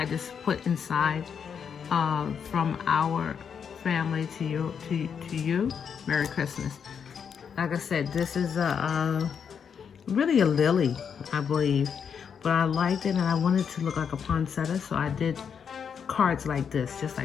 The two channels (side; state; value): right; quieter; 7.1 dB